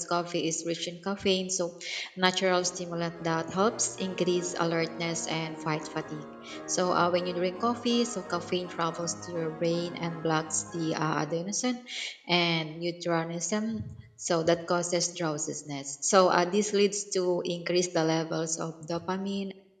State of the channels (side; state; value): both; identical; correlation 1.00